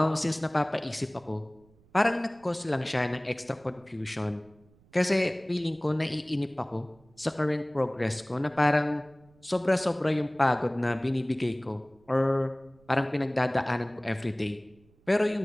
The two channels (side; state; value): right; noise; rumble, 30 dB below the sound